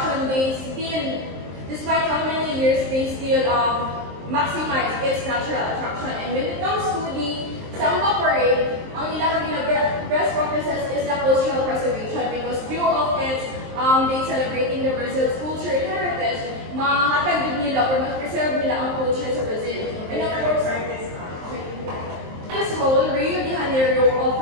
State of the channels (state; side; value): late; left; 23 ms